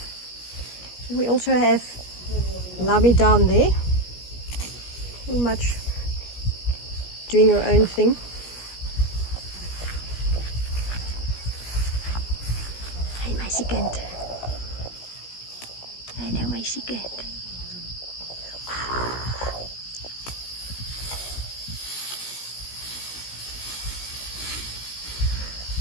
We also have Lammie down there, pretty much doing her own thing. Hey, meisiekind. Hello, meisiekind.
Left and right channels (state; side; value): late; right; 17 ms